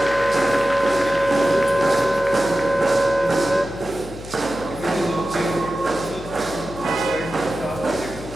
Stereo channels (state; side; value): noise; left; hum, 15 dB below the sound